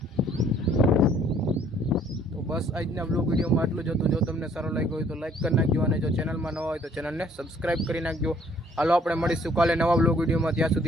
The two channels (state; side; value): normal; both; correlation 0.60